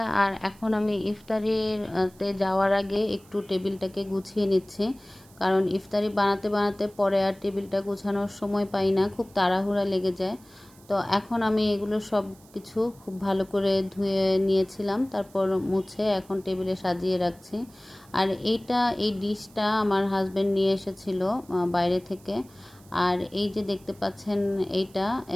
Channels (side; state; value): right; noise; hiss, 27 dB below the sound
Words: আর এখন আমি ইফতারিতে যাওয়ার আগে একটু টেবিলটাকে গুছিয়ে নিচ্ছি, কারণ ইফতারি বানাতে বানাতে পরে আর টেবিলটা গুছানোর সময় পাই না, খুব তাড়াহুড়া লেগে যায়। তো এখন আমি এগুলো সব কিছু খুব ভালো করে ধুয়ে নিয়েছিলাম, তারপর মুছে এখন টেবিলে সাজিয়ে রাখছি। আর এই ডিশটা আমার হাজব্যান্ড নিয়ে এসেছিল বাইরে থেকে। আর এই যে দেখতে পাচ্ছেন এইটা,